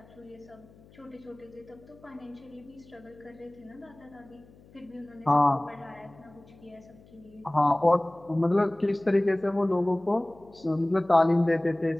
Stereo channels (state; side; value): noise; left; hum, 25 dB below the sound